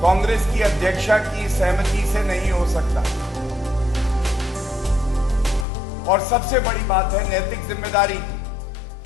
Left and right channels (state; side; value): drops out; right; at 5.7 s